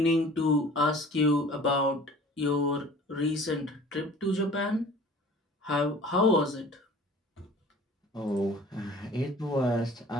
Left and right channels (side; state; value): both; normal; correlation 0.46